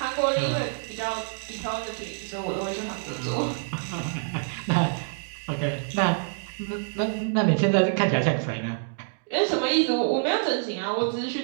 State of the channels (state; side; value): silent; left; digital silence